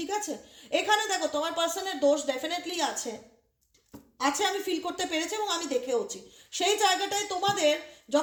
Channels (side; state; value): both; identical; correlation 1.00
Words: আছে। এখানে দেখো তোমার পার্সনের দোষ ডেফিনেটলি আছে, আছে, আমি ফিল করতে পেরেছি এবং আমি দেখেওছি। সেই জায়গাটায় তোমাদের